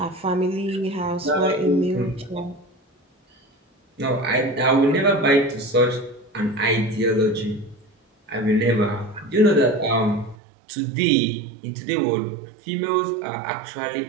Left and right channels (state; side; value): drops out; left; at 10.4 s